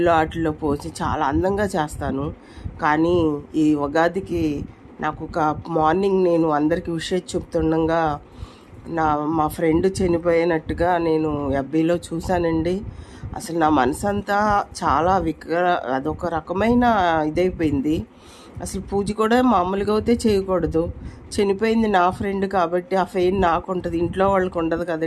వాటిల్లో పోసి చాలా అందంగా చేస్తాను. కానీ ఈ ఉగాదికి నాకు ఒక మార్నింగ్ నేను అందరికీ విషయం చెప్తుండగా మా ఫ్రెండ్ చనిపోయినట్టుగా నేను ఎఫ్బీలో చూశానండి. అసలు నా మనసంతా చాలా అదొక రకమైన ఇదైపోయింది. అసలు పూజ కూడా మామూలుగా అయితే చేయకూడదు. చనిపోయింది నా ఫ్రెండ్ కాబట్టి ఆ ఫెయిన్ నాకు ఉంటుంది, ఇంట్లో వాళ్ళకి ఉండదు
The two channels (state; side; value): identical; both; correlation 1.00